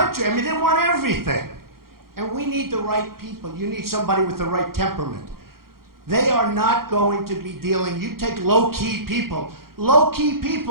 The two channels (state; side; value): late; left; 0.93 ms